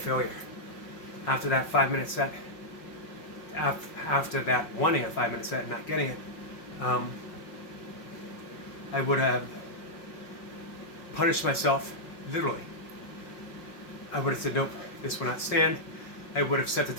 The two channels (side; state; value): right; late; 5.5 ms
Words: After that 5-minute set, after that wanting a 5-minute set and not getting it, I would have punished myself, literally. I would have said, nope, this will not stand. I would have set the